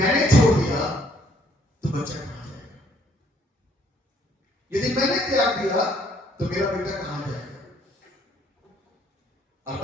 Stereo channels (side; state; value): both; normal; correlation 0.64